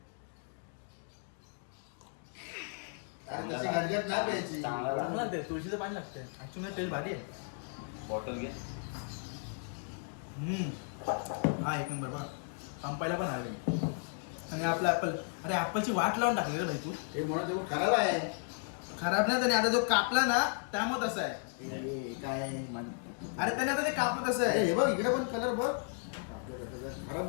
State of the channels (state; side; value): silent; right; 55 dB below the other